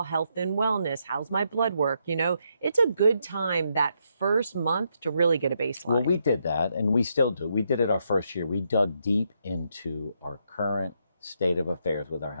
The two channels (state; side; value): inverted; both; correlation -0.78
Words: health and wellness? How's my blood work? It's a good time that first month to really get a baseline. Well, we did that, and we still do. We did it our first year. We dug deep into our current state of affairs with our